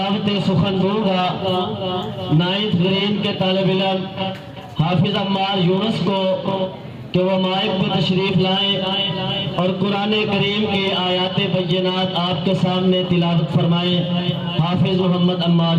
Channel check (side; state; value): both; identical; correlation 1.00